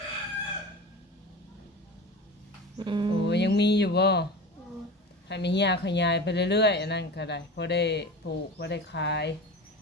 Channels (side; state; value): both; normal; correlation 0.31